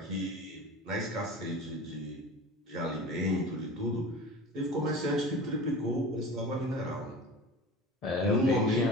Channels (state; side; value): normal; both; correlation 0.36